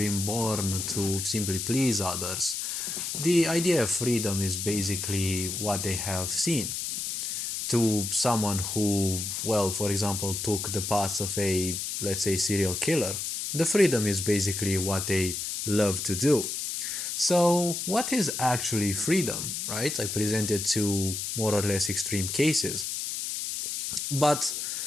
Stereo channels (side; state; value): left; noise; hiss, 3 dB below the sound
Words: born to simply please others, the idea of freedom is basically what they have seen. To someone who, well, for example, took the path of a, let's say, serial killer, the freedom is basically what they love to do. So, what is actually freedom, right? I presented two more or less extreme cases. But